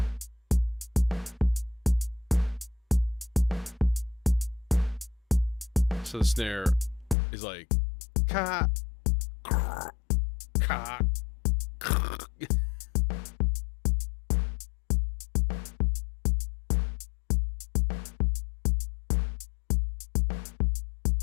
So the snare is like ka ka.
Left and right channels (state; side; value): drops out; right; at 7.2 s